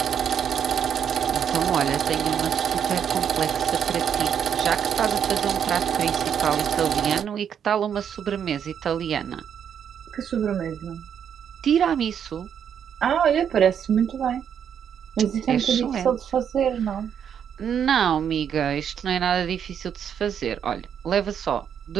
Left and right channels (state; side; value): quieter; left; 8.3 dB